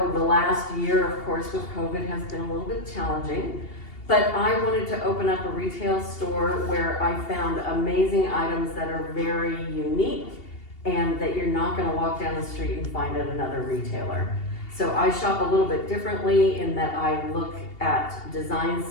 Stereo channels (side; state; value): right; late; 2.8 ms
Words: the last year, of course, with COVID has been a little bit challenging, but I wanted to open up a retail store where I found amazing items that are very unique and that you're not gonna walk down the street and find at another retailer. So I shop a little bit differently in that I look at design